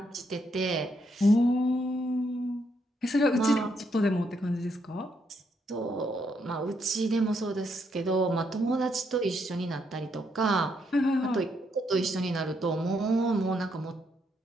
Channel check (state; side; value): normal; both; correlation 0.76